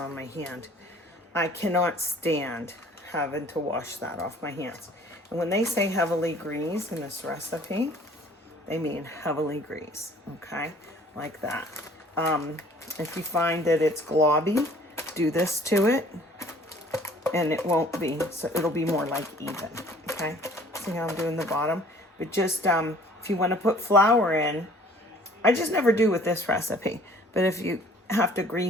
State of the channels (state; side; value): normal; both; correlation 0.53